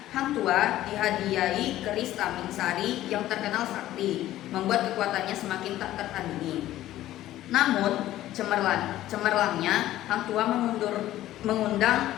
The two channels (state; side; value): quieter; right; 14.2 dB